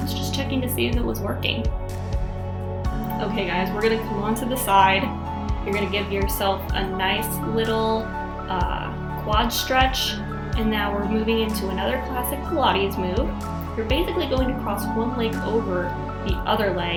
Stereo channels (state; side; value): identical; both; correlation 1.00